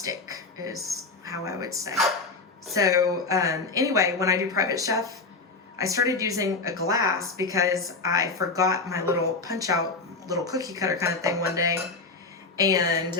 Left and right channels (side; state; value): right; quieter; 3.9 dB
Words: is how I would say. So anyway, when I do private chef, I started using a glass because I forgot my little punch out, little cookie cutter kind of thing one day.